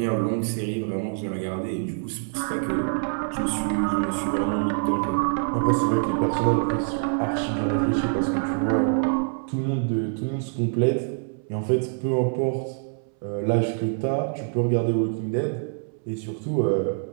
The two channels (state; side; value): silent; left; 62 dB below the other